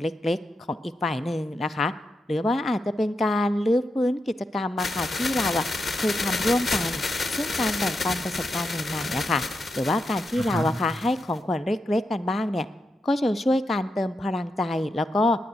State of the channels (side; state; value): both; normal; correlation 0.86